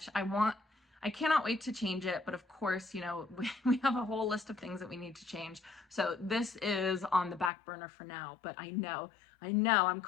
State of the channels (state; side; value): drops out; right; at 7.5 s